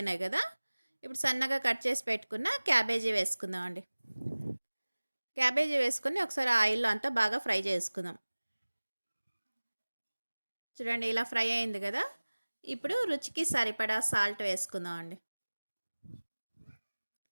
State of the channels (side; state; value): both; inverted; correlation -1.00